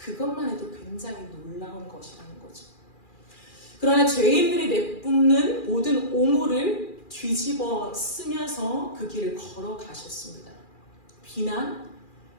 해도 굉장히 놀라운 것이라는 거죠. 그러나 죄인들이 내뿜는 모든 오물을 뒤집어 쓰면서 그 길을 걸어가셨습니다. 비난,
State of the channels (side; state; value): right; late; 2.4 ms